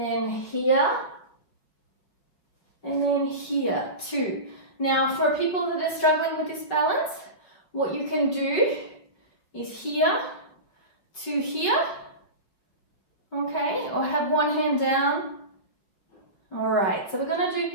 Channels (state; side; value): late; right; 5.5 ms